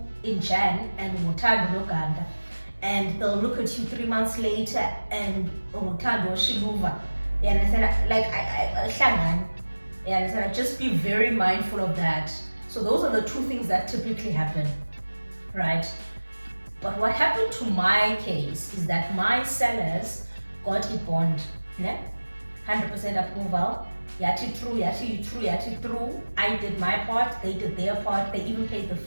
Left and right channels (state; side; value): inverted; both; correlation -1.00